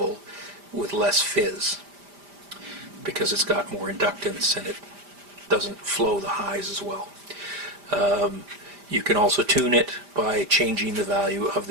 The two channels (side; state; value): left; late; 5.0 ms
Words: with less fizz, because it's got more inductance and it doesn't flow the highs as well. You can also tune it by changing the value of